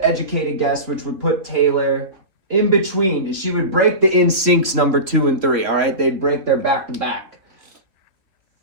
educated guess, which would put Taylor in between. She would break the NSYNC's number 2 and 3, all right? They'd break their back-to-back.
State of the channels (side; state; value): left; late; 3.0 ms